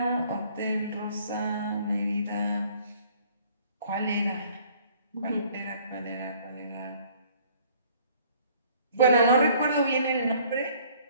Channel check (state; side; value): inverted; both; correlation -0.56